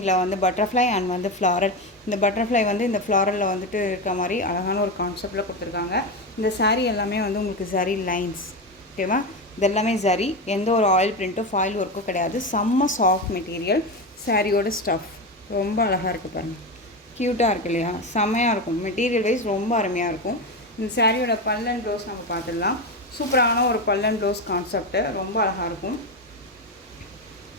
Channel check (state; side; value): normal; both; correlation 0.16